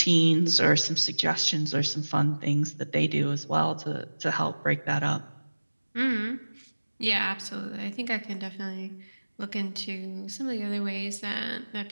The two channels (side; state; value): both; inverted; correlation -1.00